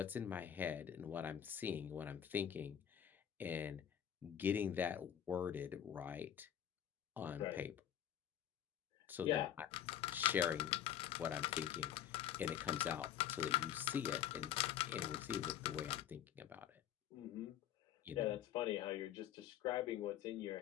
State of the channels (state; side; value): quieter; right; 10.3 dB